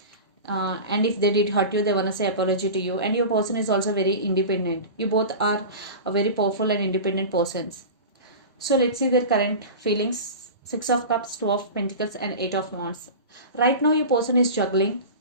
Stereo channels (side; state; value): both; inverted; correlation -0.31